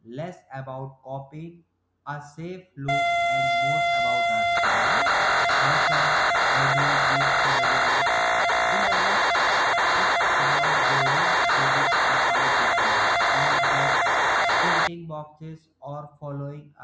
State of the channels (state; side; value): identical; both; correlation 1.00